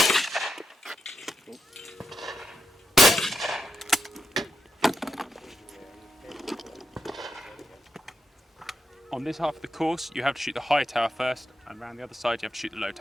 On this half of the course, you have to shoot the high tower first, and around the other side, you have to shoot the low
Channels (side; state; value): both; normal; correlation 0.84